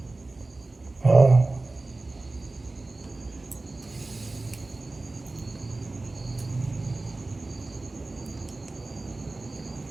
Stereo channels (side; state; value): left; quieter; 3.2 dB